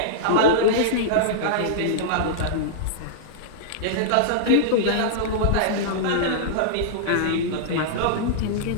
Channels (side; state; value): both; different; correlation -0.02